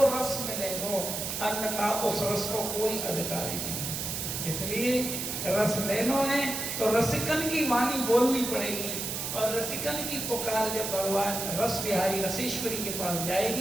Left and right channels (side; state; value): right; noise; hiss, 3 dB below the sound